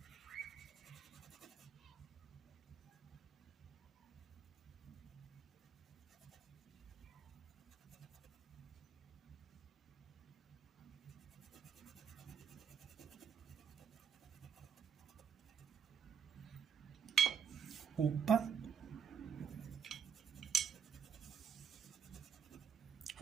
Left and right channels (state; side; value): quieter; left; 7.4 dB